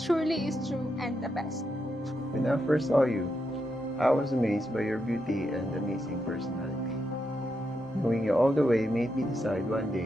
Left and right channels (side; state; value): both; normal; correlation 0.84